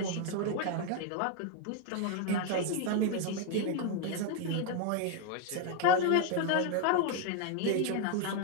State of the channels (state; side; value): different; both; correlation 0.01